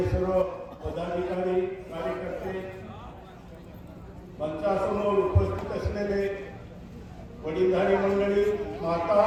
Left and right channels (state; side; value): identical; both; correlation 1.00